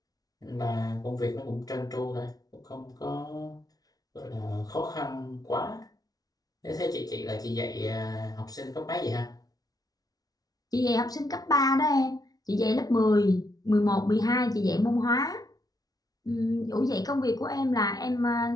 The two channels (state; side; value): late; right; 0.18 ms